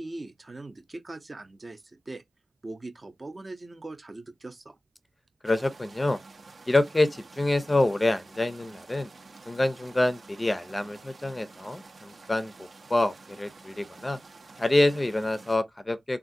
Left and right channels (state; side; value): normal; both; correlation 0.98